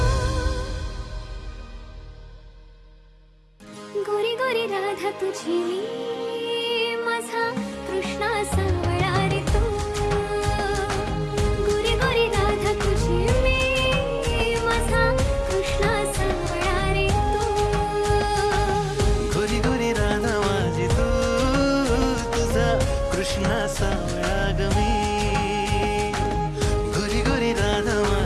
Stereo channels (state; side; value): identical; both; correlation 1.00